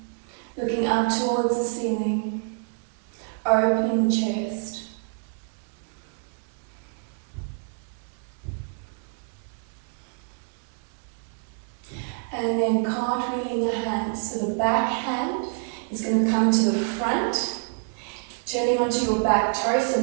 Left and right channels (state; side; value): silent; left; 56 dB below the other